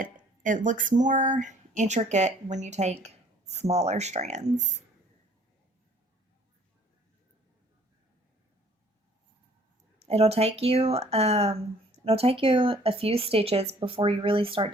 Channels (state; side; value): normal; both; correlation 0.57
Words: it looks more intricate when you take smaller strands. It'll take you a few stitches before you really start